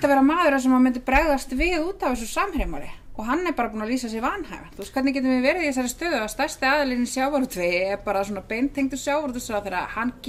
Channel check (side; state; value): both; identical; correlation 1.00